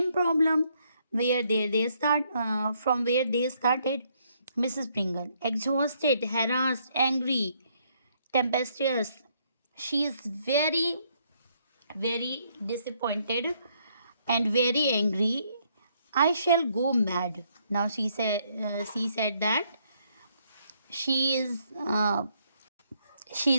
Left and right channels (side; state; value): both; inverted; correlation -0.71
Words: problem where they start from where they started. Mrs. Pringle, exhausted, harassed, angry, tempestuous. She is very, very disappointed and very angry. I shall go mad. Now she said that she is she